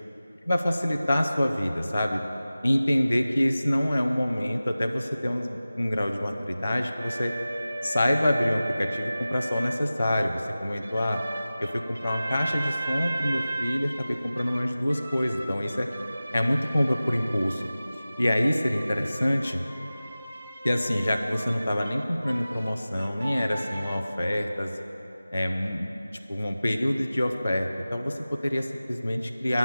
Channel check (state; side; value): inverted; both; correlation -0.96